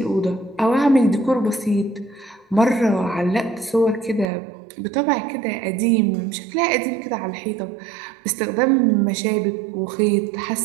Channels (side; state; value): left; drops out; at 4.3 s